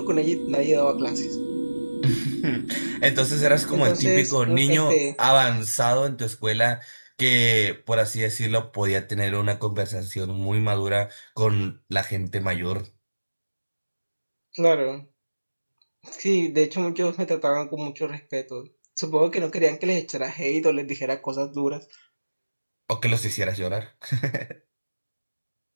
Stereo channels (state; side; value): inverted; both; correlation -1.00